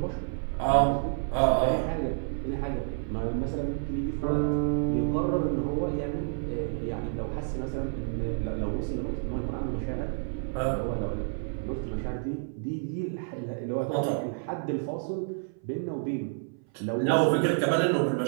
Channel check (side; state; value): left; silent; 57 dB below the other